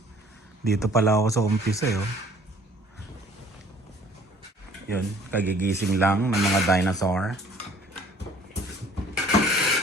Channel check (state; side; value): normal; both; correlation 0.54